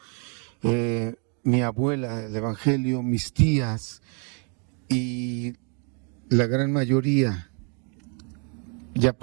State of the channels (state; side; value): quieter; left; 37.8 dB